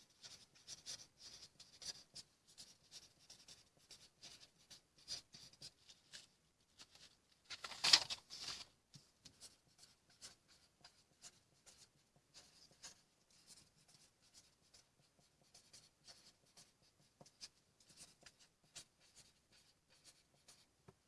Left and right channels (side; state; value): both; identical; correlation 1.00